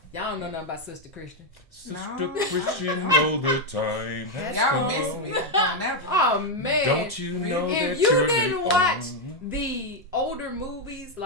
Y'all don't know nothing about Sister Christian. Sister Christian, know the time has Y'all come. miss me on that one. Oh, man. Don't you know that if you you're didn't the watch only- the older movies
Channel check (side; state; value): both; normal; correlation 0.02